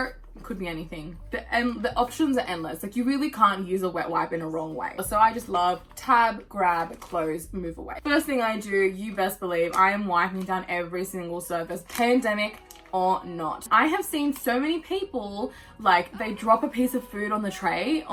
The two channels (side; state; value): both; identical; correlation 1.00